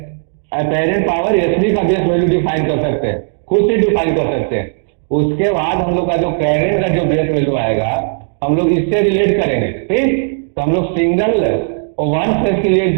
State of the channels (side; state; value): left; silent; digital silence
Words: apparent power SB का बेस वैल्यू डिफाइन कर सकते हैं, खुद से डिफाइन कर सकते हैं। उसके बाद हम लोग का जो करंट का जो बेस वैल्यू आएगा हम लोग इससे रिलेट करेंगे, ठीक। तो हम लोग सिंगल और 1 फेज के लिए